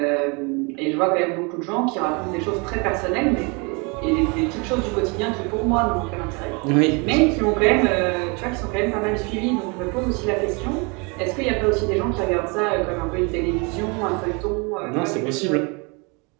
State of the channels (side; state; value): left; quieter; 30.8 dB